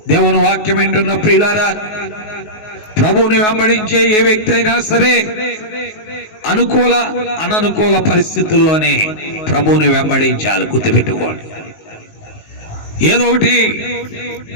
దేవుని వాక్యం ఏంటున్న ప్రియులారా, ప్రభువుని వెంబడించే ఏ వ్యక్తి అయినా సరే అనుకూల అననుకూల పరిస్థితుల్లోనే ప్రభువుని వెంబడించాలి. గుర్తుపెట్టుకోండి. ఏదో ఒకటి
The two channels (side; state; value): right; late; 19 ms